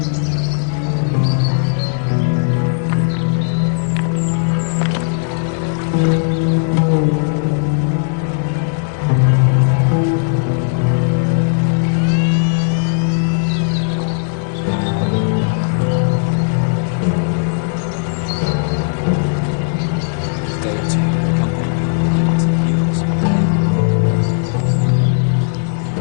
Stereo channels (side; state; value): right; silent; digital silence